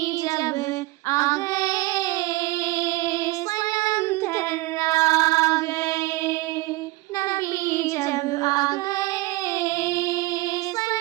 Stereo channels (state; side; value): quieter; left; 20.3 dB